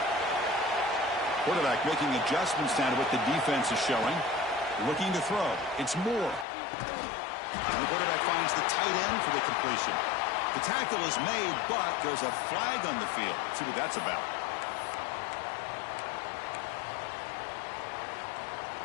Quarterback making adjustments down to what the defense is showing. Looking to throw. It's Moore. And the quarterback finds the tight end for the completion. The tackle is made, but there's a flag on the field. Let's see what that's about.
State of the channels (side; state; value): right; drops out; at 6.5 s